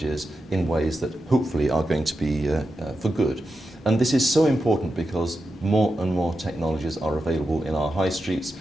in ways that hopefully are going to be for good. And this is so important because more and more technologies are available in our high streets,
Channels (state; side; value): normal; both; correlation 0.89